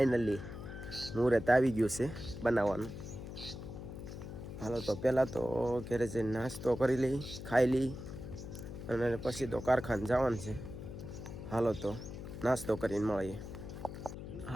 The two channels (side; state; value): left; noise; hum, 10 dB below the sound